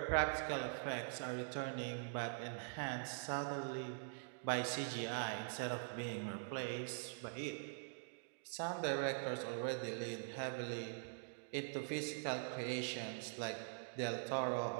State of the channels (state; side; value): silent; left; digital silence